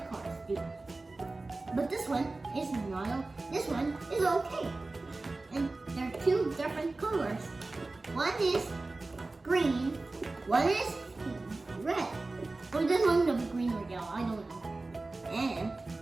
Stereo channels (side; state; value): left; quieter; 3.3 dB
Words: cars do. But this one is not. This one is okay. And there are two different colors. One is green, one is red. Or this one's gonna be green or yellow, I don't know. And